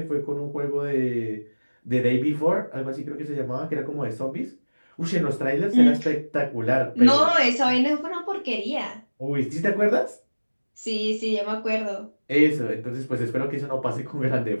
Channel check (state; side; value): inverted; both; correlation -1.00